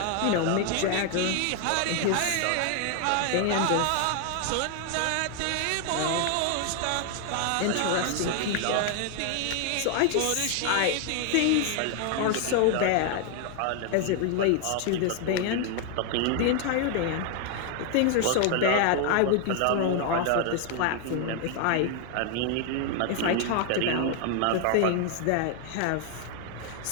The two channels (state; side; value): different; both; correlation 0.00